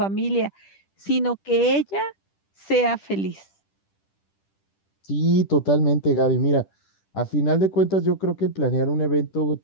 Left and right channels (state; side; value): late; right; 10 ms